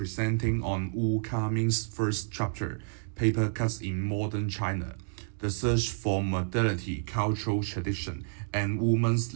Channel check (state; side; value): silent; left; digital silence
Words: on Wu Kaming's first chapter, Paper Cuts in Modern China, the search for modernity, cultural tradition, and women's